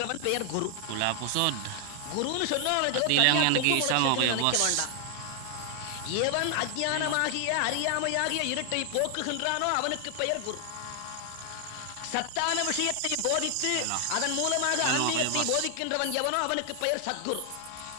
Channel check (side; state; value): both; different; correlation 0.00